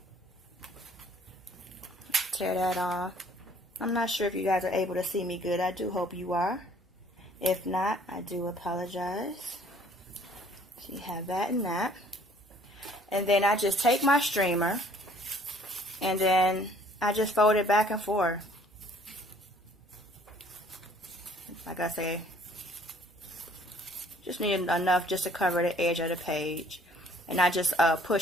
Tear that off. I'm not sure if you guys are able to see me good. I do hope you are. If not, I do apologize. So you have that and that. And then I just take my streamer and then I just fold it back and forth. Like I say, just need enough just to cover the edge of the page. And I just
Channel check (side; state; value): both; normal; correlation 0.57